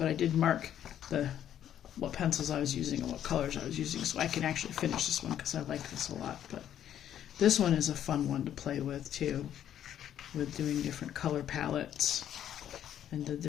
I did mark what pencils I was using and what colors I was using, so I can actually finish this one because I like this a lot. But this one is a fun one to play with too, with doing different color palettes and the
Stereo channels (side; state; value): right; quieter; 10.5 dB